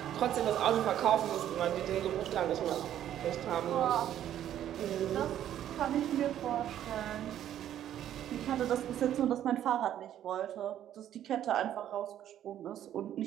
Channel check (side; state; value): left; quieter; 11.2 dB